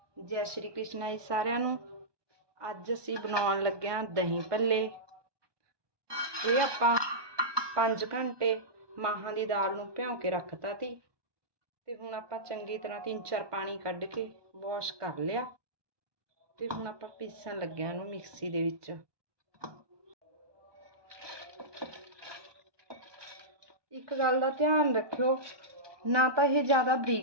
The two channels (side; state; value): left; late; 1.2 ms